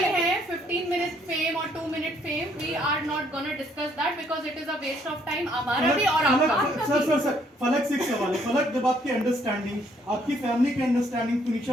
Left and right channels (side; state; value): both; normal; correlation 0.67